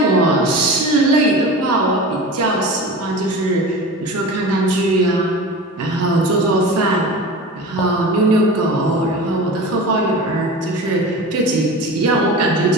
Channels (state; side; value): normal; both; correlation 0.32